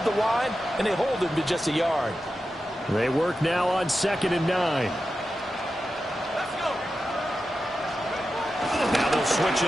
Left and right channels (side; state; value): both; normal; correlation 0.91